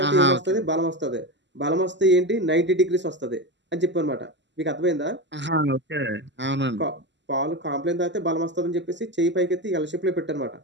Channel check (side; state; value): left; late; 0.53 ms